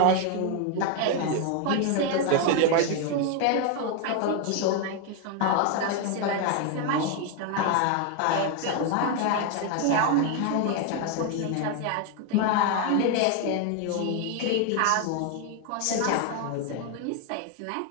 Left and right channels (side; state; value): both; different; correlation 0.01